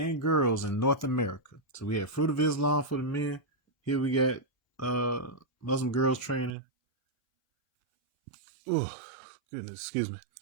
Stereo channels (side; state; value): left; drops out; at 6.6 s